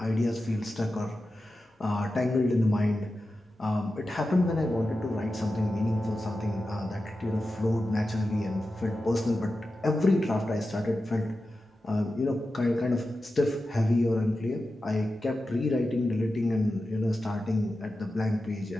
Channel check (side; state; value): both; normal; correlation 0.92